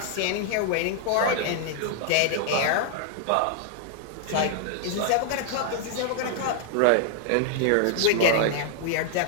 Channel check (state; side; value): different; both; correlation -0.01